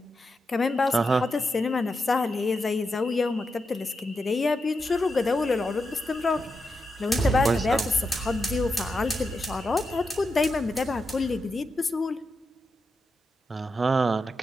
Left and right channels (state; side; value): normal; both; correlation 0.87